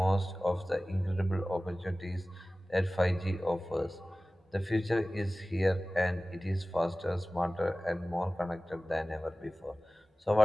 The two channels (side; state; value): both; normal; correlation 0.97